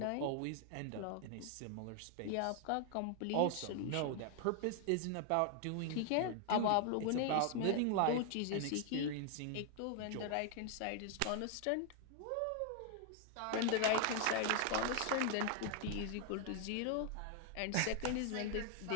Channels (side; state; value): both; different; correlation 0.00